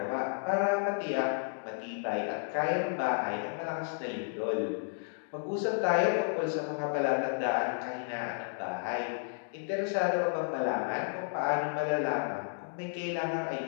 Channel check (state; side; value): silent; right; digital silence